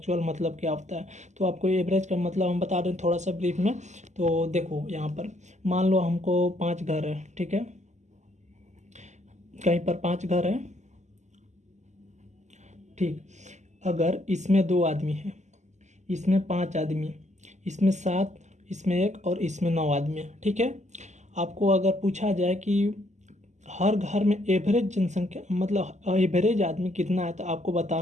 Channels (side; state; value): left; late; 0.34 ms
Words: मतलब क्या होता है। तो आपको एवरेज का मतलब हम बता दें थोड़ा सा ब्रीफ में। तो देखो यहाँ पर मान लो हमको 5 घर है। ठीक है, कहीं पर 5 घर है। ठीक, अगर इसमें 2 आदमी हैं, इसमें 5 आदमी, इसमें 7, इसमें 1 और इसमें 9 आदमी है। ठीक है, आपको अगर पूछा जाए कि हर घर में एवरेज जनसंख्या मतलब एवरेज आदमी कितना है, तो आपको